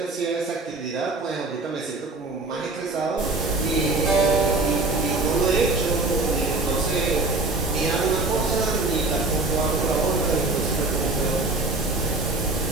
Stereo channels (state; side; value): quieter; left; 3.2 dB